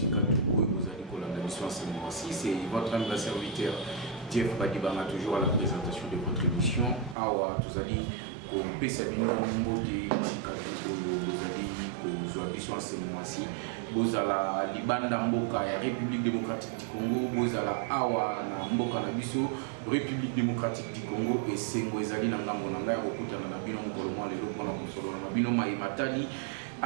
Tuko et vous allez coller la mission ce mois-ci. C'est votre ami serviteur Jeff Badibanga, toujours à la présentation de votre émission. Awa, tous allez comme Pesabino Mboti Bisika Tuko, vous allez que vous mission ce mois-ci. Vous allez Libanda Mboka et République démocratique du Congo. Vous allez Awa na Mboka na Biso. République démocratique du Congo et Sengo ezali na ngambo na ngai okutana na bino mokolo mwa lelo pona kosolola na bino matadi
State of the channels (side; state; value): left; drops out; at 7.2 s